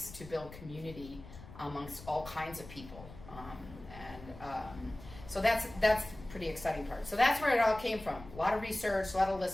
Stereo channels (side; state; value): left; noise; rumble, 16 dB below the sound